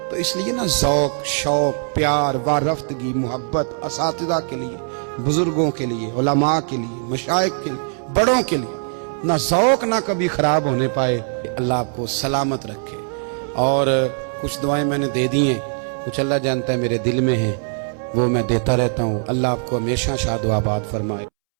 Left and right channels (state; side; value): silent; left; 65 dB below the other